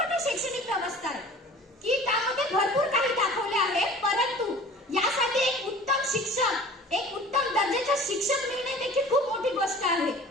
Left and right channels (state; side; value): normal; both; correlation 0.44